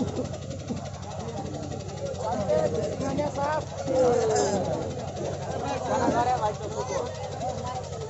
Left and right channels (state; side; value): identical; both; correlation 1.00